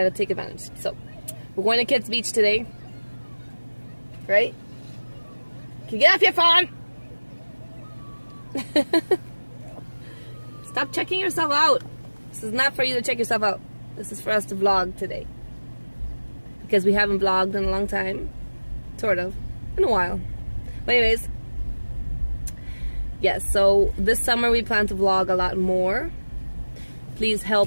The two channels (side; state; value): both; inverted; correlation -1.00